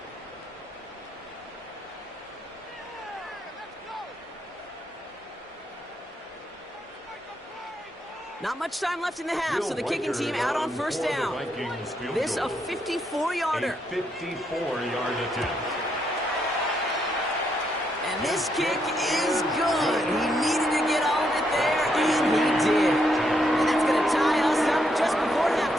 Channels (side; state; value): both; normal; correlation 0.77